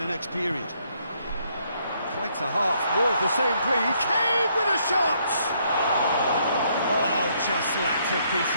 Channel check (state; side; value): inverted; both; correlation -0.70